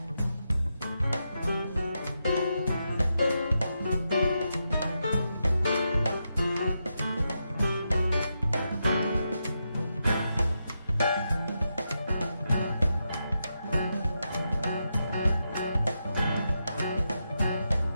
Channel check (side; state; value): both; inverted; correlation -0.85